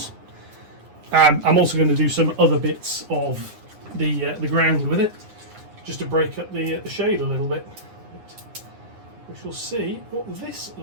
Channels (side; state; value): left; late; 9.7 ms